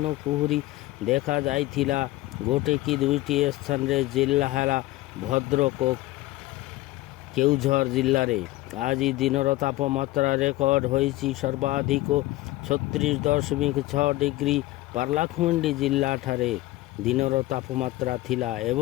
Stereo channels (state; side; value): quieter; right; 17.8 dB